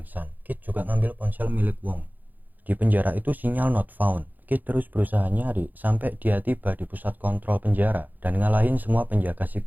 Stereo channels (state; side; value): late; left; 0.084 ms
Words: Kit juga ngambil ponsel milik Wong. Di penjara itu sinyal not found. Kit terus berusaha nyari sampai dia tiba di pusat kontrol penjara dan ngalahin semua penjaga